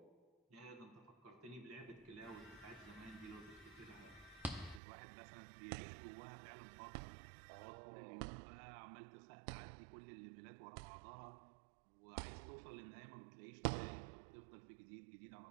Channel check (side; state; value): left; drops out; at 4.8 s